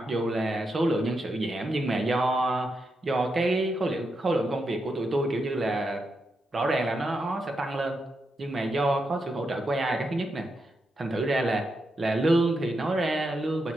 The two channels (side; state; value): both; normal; correlation 0.85